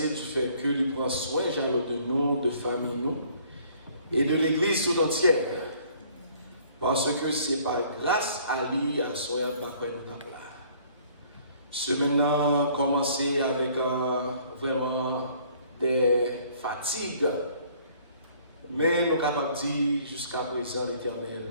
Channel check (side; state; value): both; inverted; correlation -0.58